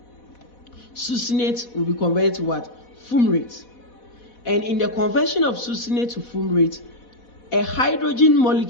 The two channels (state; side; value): late; right; 4.1 ms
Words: Succinate will be converted to what? Fumarate. And in the conversion of succinate to fumarate, a hydrogen